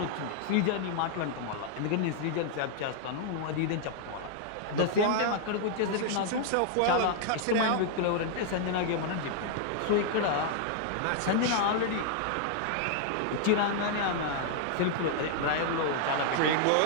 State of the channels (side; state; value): both; different; correlation 0.00